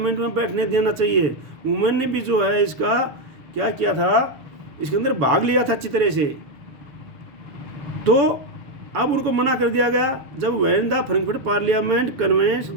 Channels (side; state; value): left; late; 6.6 ms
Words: में बैठने देना चाहिए। वुमेन ने भी जो है इसका क्या किया था, इसके अंदर भाग लिया था अच्छी तरह से। तो अब उनको मना कर दिया गया जब when the Frankfurt parliament convenes